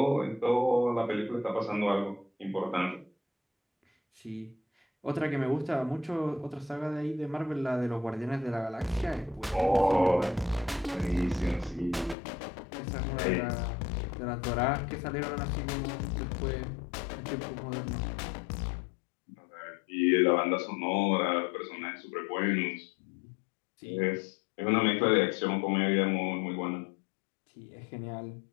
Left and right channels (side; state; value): right; drops out; at 12.2 s